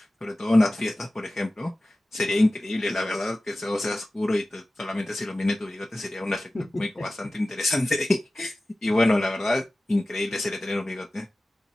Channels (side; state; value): both; normal; correlation 0.97